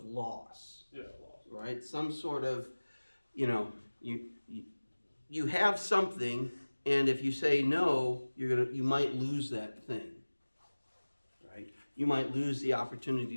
loss. Yeah, loss. Right? Some sort of, you have something, and if you say no, you might lose that thing. Right? You might lose the opportunity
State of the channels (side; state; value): both; inverted; correlation -1.00